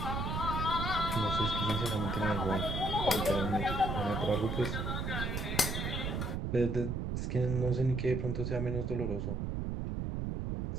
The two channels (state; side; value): noise; right; rumble, 2 dB below the sound